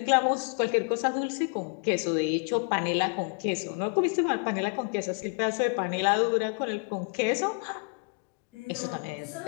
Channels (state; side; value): quieter; right; 38.8 dB